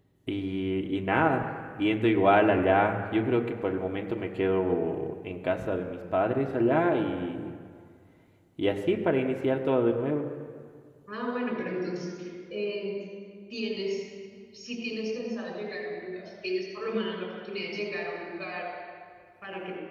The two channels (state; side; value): identical; both; correlation 1.00